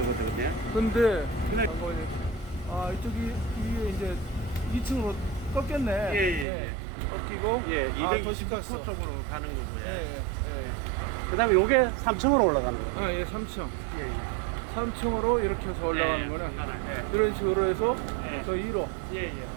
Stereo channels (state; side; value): drops out; left; at 6.5 s